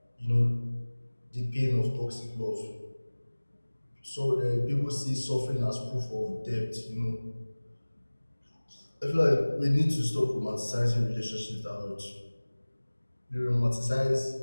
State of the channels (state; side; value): inverted; both; correlation -1.00